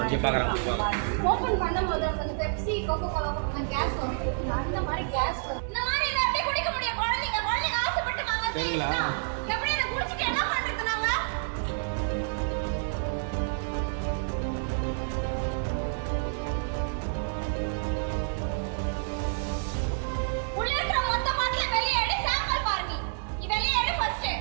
open பண்ணும்போது அந்த பெப்சி கோகோ கோலா கேஸ் வரும் அந்த மாதிரி கேஸ் இந்த மாதிரி இத அப்படியே குடிக்க முடியும் குழந்தைங்க ஆசைப்பட்டு வாங்குறீங்களா எப்படி இத குடிச்சிட்டு என்ன பண்றது நாங்க உள்ள இருக்க மொத்த பாட்டில வெளிய எடு சாம்பிள் பாருங்க நீ வெளிய எடு ஃபர்ஸ்ட்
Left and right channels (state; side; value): silent; left; digital silence